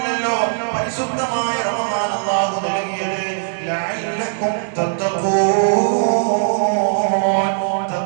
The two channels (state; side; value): silent; left; 66 dB below the other